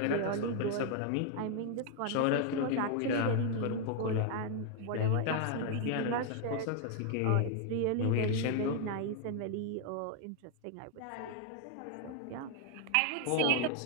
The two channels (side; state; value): both; different; correlation 0.00